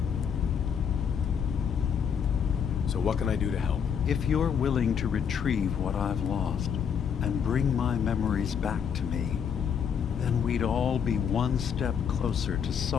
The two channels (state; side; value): quieter; right; 7.5 dB